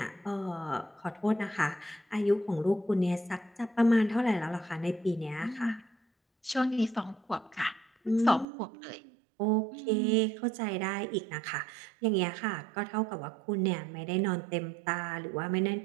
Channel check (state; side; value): drops out; left; at 8.5 s